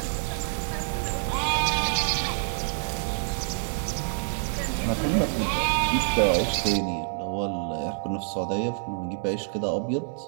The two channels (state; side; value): silent; left; digital silence